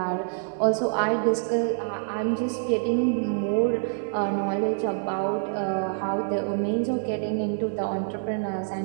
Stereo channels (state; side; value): silent; left; digital silence